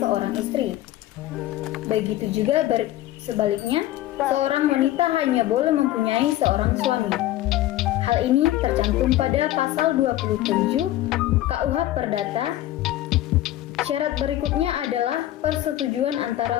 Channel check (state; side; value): quieter; right; 14.5 dB